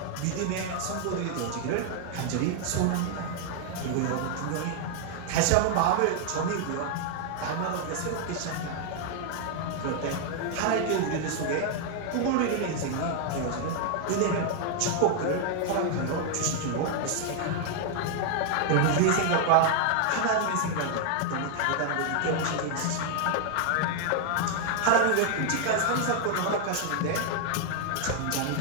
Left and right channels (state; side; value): different; both; correlation 0.00